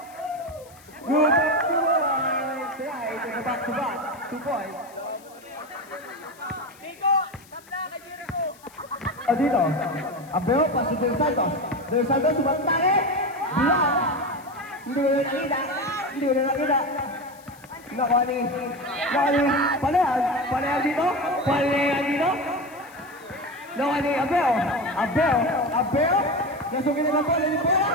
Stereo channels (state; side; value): noise; left; hiss, 25 dB below the sound